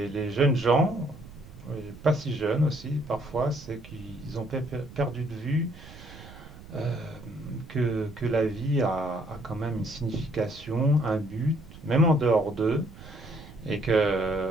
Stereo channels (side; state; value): right; noise; rumble, 18 dB below the sound